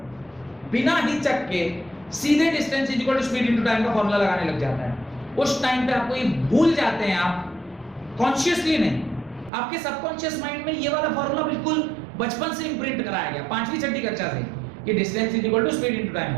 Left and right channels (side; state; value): left; drops out; at 9.5 s